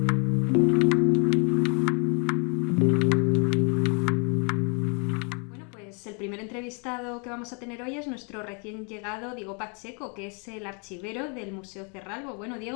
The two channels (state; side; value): quieter; right; 36.7 dB